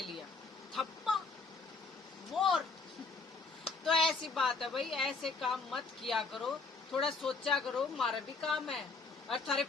लिया थप्पा वोर। तो ऐसी बात है भाई ऐसे काम मत किया करो। थोड़ा सोचा करो हमारा भी काम है। और थारे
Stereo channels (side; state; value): right; quieter; 4.2 dB